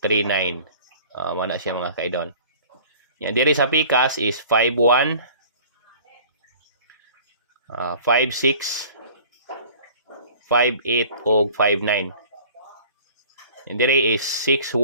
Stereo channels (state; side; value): inverted; both; correlation -0.47